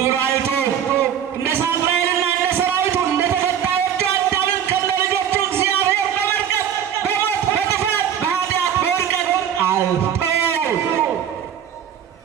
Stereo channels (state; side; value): quieter; left; 9.1 dB